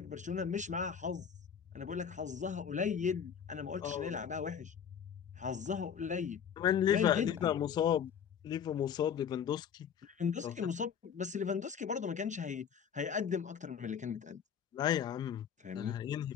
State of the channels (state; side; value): quieter; right; 7.8 dB